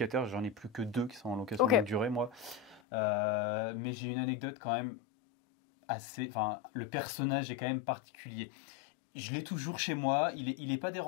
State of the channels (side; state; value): right; drops out; at 2.8 s